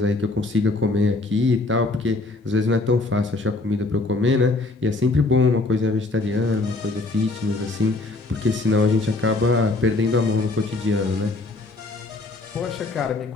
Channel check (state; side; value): quieter; right; 3.1 dB